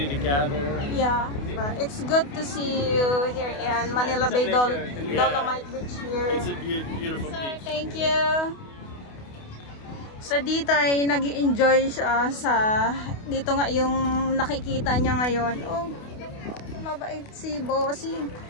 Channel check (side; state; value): right; late; 28 ms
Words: to gather. Yeah, it's good to see you here in Manila Bay Dolomite Beach here. It's a beautiful Sir, beach. thank you. So dito ay nag-i-enjoy siya sa dito nga yung nakikita niya ngayon. Oh, mabait si Bossing.